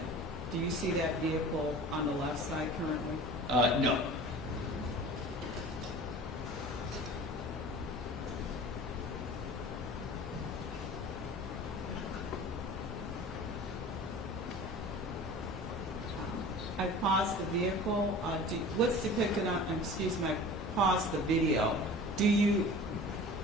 Do you see that vehicle on the left side currently? No. I paused the vehicle. What's depicted on, excuse me, I paused the video.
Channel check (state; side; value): normal; both; correlation 0.40